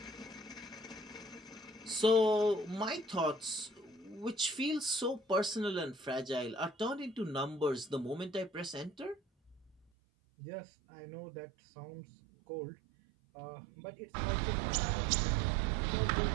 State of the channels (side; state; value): left; drops out; at 9.8 s